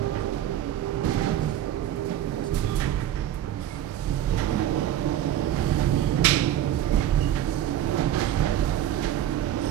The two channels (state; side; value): quieter; left; 11.6 dB